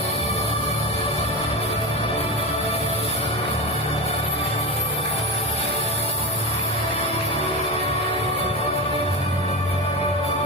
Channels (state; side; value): normal; both; correlation 0.22